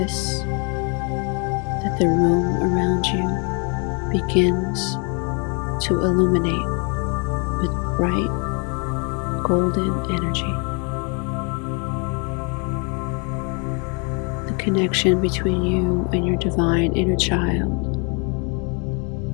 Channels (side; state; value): right; quieter; 35.8 dB